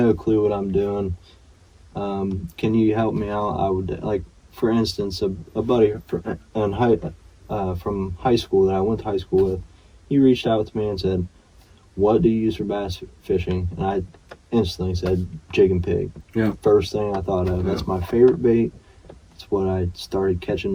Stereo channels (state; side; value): identical; both; correlation 1.00